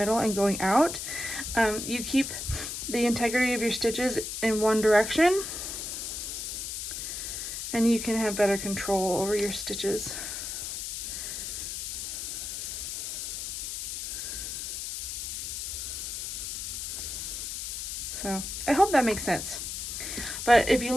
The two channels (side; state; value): left; noise; hiss, 5 dB below the sound